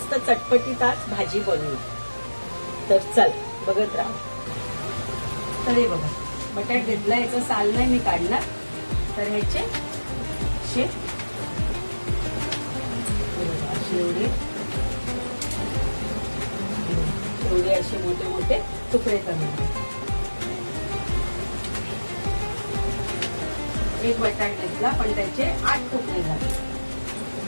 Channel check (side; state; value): both; inverted; correlation -1.00